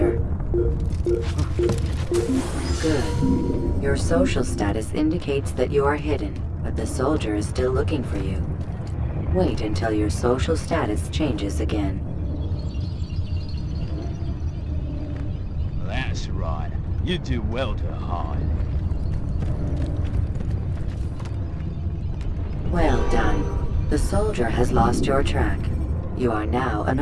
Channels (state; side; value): identical; both; correlation 1.00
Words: Good. Your social status indicates that you are hidden, but the soldier is still looking for you. Wait until your social status changes again. That's right. You do well to hide. Well done. The soldier has lost your track. You are now